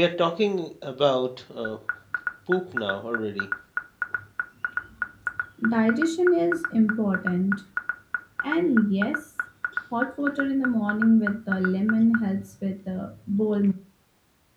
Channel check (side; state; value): both; identical; correlation 1.00